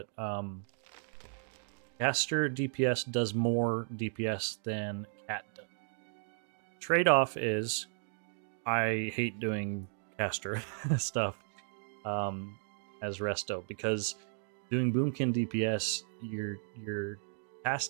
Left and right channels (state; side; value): silent; left; digital silence